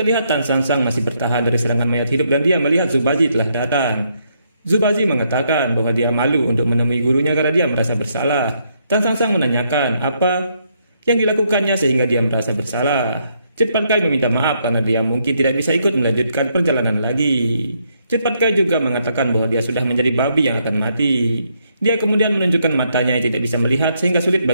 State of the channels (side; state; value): both; inverted; correlation -0.75